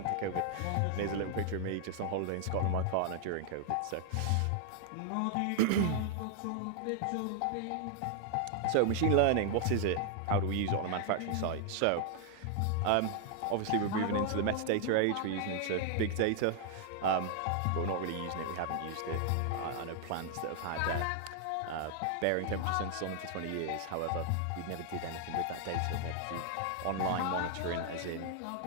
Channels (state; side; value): different; both; correlation 0.00